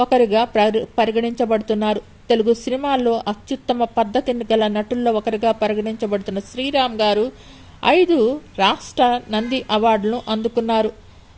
పరిగణించబడుతున్నారు. తెలుగు సినిమాల్లో అత్యుత్తమ పద్ధతిని గల నటుల్లో ఒకరిగా పరిగణించబడుతున్న శ్రీరామ్ గారు 5 రాష్ట్ర నంది అవార్డులను అందుకున్నారు.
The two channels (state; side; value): identical; both; correlation 1.00